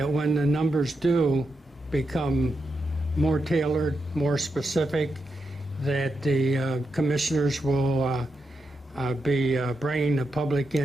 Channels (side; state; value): both; normal; correlation 0.85